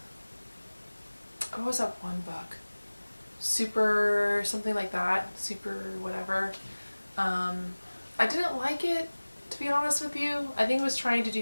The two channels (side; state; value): both; inverted; correlation -1.00